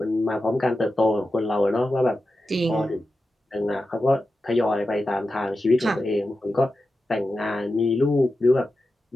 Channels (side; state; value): both; normal; correlation 0.91